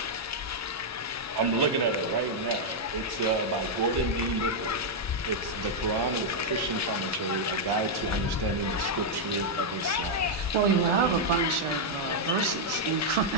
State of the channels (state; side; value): normal; both; correlation -0.03